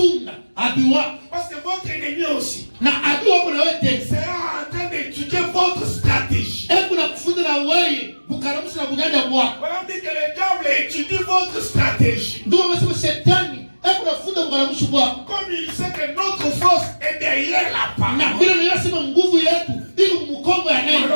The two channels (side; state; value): both; inverted; correlation -1.00